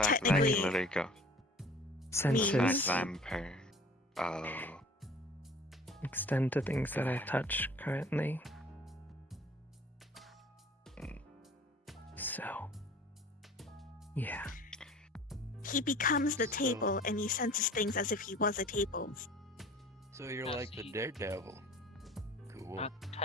that I technically can literally go. The fact Senses that I'm per. Oh. extend to things that I touch currently. So, yeah. He becomes the table, and he senses things as if he was a table. So you're like the daredevil. Cool. Not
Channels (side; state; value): both; normal; correlation 0.47